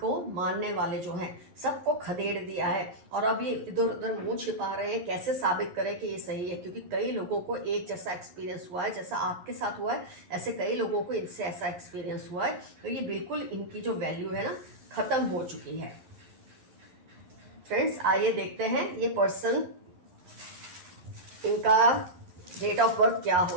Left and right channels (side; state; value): left; late; 11 ms